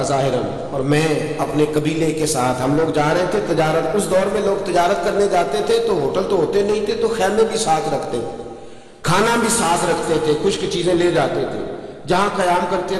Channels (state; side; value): identical; both; correlation 1.00